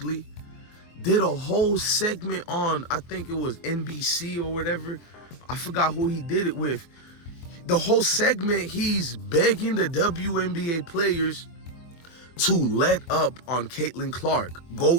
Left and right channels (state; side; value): late; right; 24 ms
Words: did a whole segment on, I think it was NBC or whatever. I forgot who he did it with. The whole segment, he's begging the WNBA players to let up on Caitlin Clark.